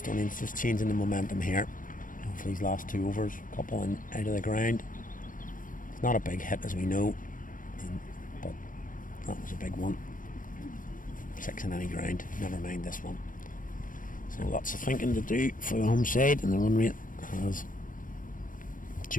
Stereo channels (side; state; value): right; late; 0.39 ms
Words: just changing the momentum here. For these last 2 overs, a couple in out of the ground. Not a big hit as we know, but that was a big one. 6 in any ground, never mind this one. So lots of thinking to do for the home side, and the run rate has